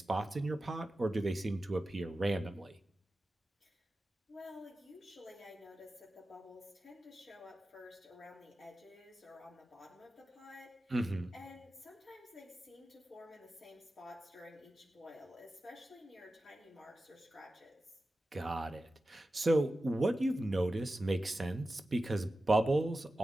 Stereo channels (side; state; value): both; normal; correlation 0.93